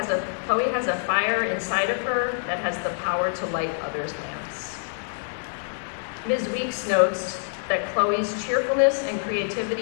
a fire inside of her that has the power to light others' lamps. Ms. Weeks notes that Chloe's cheerfulness and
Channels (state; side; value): silent; right; digital silence